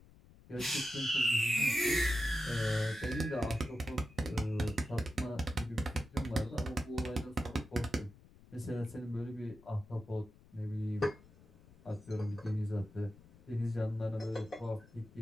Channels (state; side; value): noise; left; rumble, 23 dB below the sound